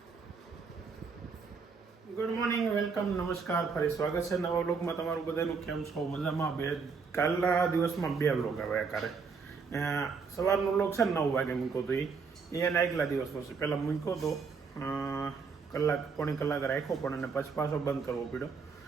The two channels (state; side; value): quieter; left; 5.2 dB